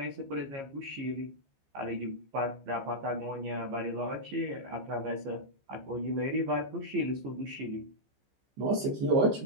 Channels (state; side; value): late; left; 15 ms